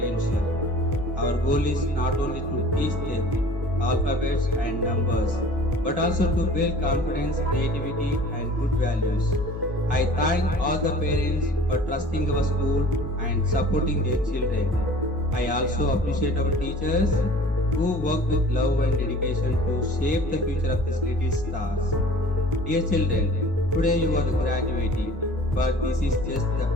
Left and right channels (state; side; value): normal; both; correlation 0.46